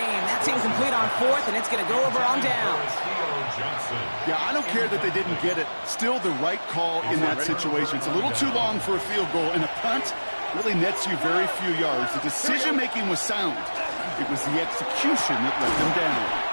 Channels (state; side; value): inverted; both; correlation -1.00